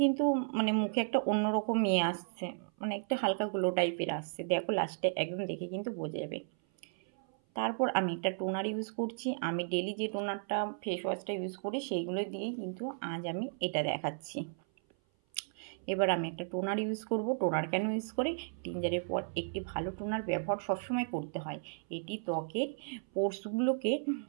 কিন্তু মুখে একটা অন্যরকম আসছে, একটা হালকা গ্লো টাইপের আসছে। দেখো লাস্টে একদম দেখে কিন্তু বোঝা যাবে। তারপর আমি একটা টোনার ইউজ করছি। আমি ডেলি যে টোনারটা, ফেস ওয়াশটা ইউজ করি সেইগুলো দিয়েই কিন্তু আজ আমি এটা দেখাচ্ছি। এবার আমি একটা টোনার ইউজ করব। টোনার কেন ইউজ করে, ক্লিনজারের পর একটি ভালো টোনার ব্যবহার সবসময় করতে হয়। এটি ত্বকের পোর্সগুলোকে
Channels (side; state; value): left; silent; 55 dB below the other